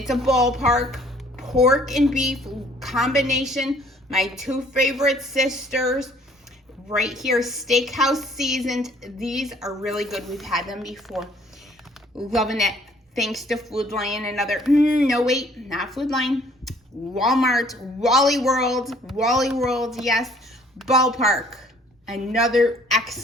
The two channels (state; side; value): normal; both; correlation 0.58